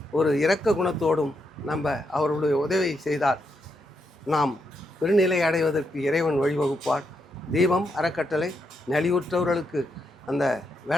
ஒரு இரக்க குணத்தோடும் நம்ம அவர்களுடைய உதவி செய்தால் நாம் பெருநிலை அடைவதற்கு இறைவன் வழிவகுப்பார். தீபம் அறக்கட்டளை நலிவுற்றவர்களுக்கு அந்த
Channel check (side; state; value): both; normal; correlation 0.81